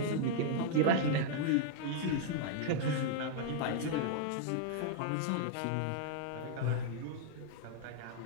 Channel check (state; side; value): different; both; correlation -0.01